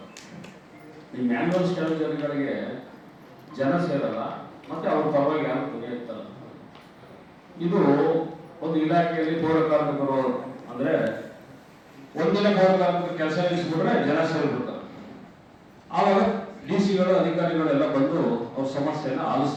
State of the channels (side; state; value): both; identical; correlation 1.00